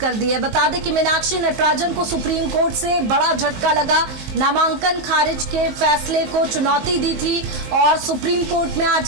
दी है। बता दें कि मीनाक्षी नटराजन को सुप्रीम कोर्ट से बड़ा झटका लगा। नामांकन खारिज के फैसले को चुनौती दी थी और सुप्रीम कोर्ट में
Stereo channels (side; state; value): left; late; 23 ms